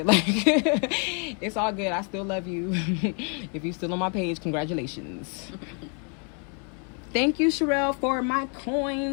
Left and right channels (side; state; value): right; quieter; 39.1 dB